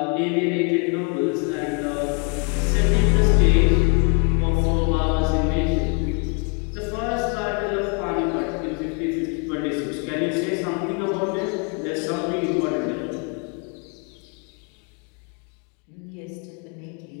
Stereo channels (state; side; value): quieter; right; 36.8 dB